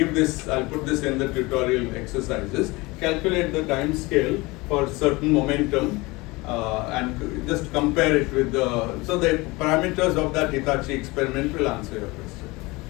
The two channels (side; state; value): right; quieter; 23.2 dB